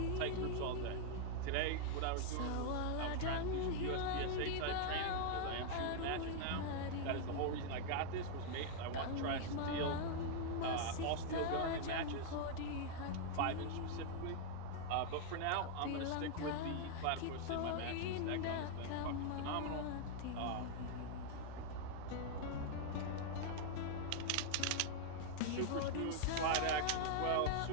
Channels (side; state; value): both; different; correlation 0.00